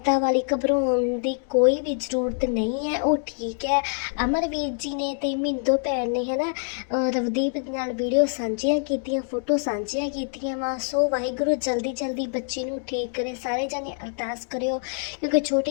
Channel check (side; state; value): right; silent; 62 dB below the other